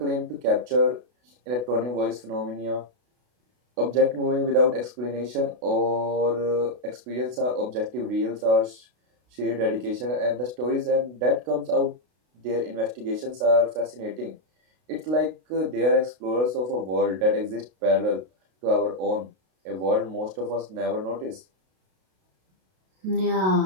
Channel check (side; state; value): left; late; 32 ms